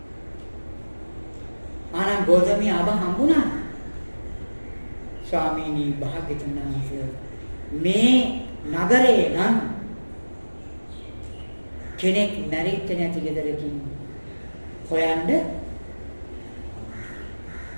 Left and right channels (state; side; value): inverted; both; correlation -1.00